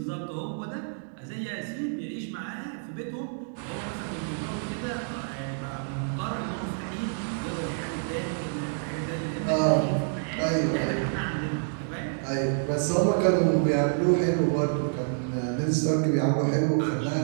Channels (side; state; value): left; silent; digital silence